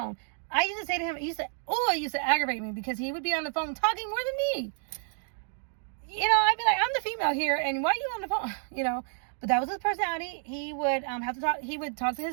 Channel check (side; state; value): left; silent; 58 dB below the other